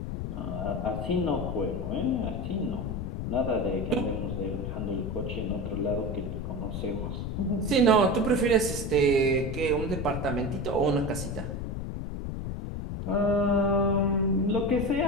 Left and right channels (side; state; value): left; noise; rumble, 4 dB below the sound